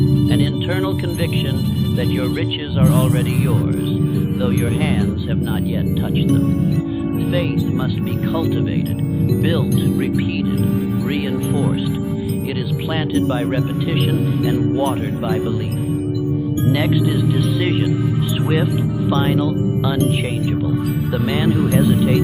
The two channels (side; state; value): both; identical; correlation 1.00